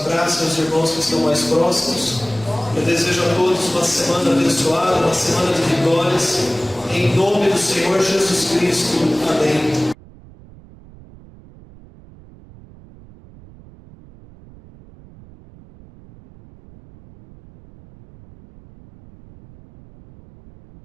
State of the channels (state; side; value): noise; right; rumble, 22 dB below the sound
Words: aos irmãos que estão mais próximos. Eu desejo a todos uma semana abençoada, uma semana de vitórias, em nome do Senhor Jesus Cristo. Amém.